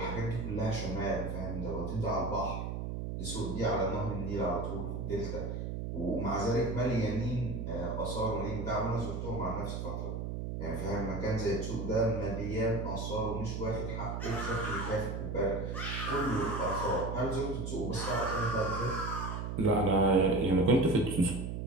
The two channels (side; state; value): right; noise; hum, 4 dB below the sound